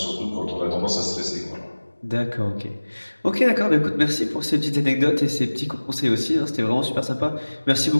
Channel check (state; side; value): inverted; both; correlation -1.00